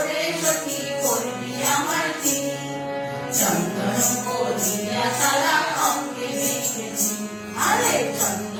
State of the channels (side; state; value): both; identical; correlation 1.00